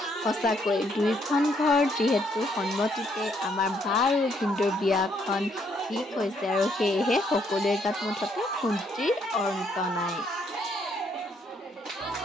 সঁচাকৈ দুইখন ঘৰ যিহেতু সন্মতিতে আমাৰ বা আৰু ভিনদেউৰ বিয়াখন ঠিক হৈছে আৰু সেয়েহে সকলোৰে গাত মুঠতে ফূৰ্তিৰ অন্ত নাই।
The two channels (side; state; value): both; normal; correlation 0.71